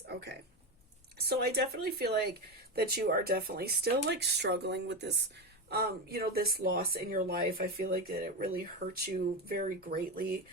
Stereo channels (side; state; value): both; normal; correlation 0.16